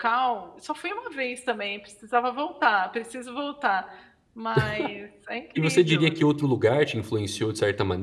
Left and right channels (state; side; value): identical; both; correlation 1.00